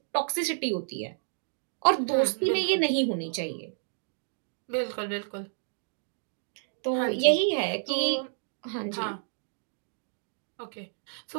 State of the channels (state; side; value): silent; left; digital silence